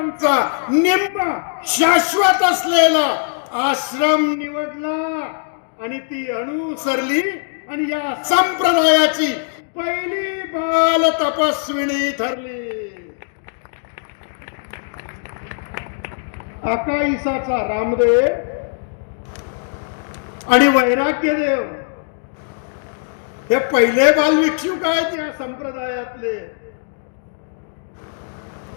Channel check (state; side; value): silent; right; digital silence